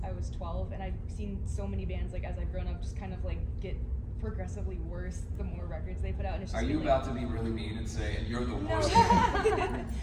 I was 12, and I've seen so many bands like as I've grown up just kind of like get progressively worse the more records they put out. And it's just Are you been, about to be really mean and say, and you're the worst? No.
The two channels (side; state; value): both; identical; correlation 1.00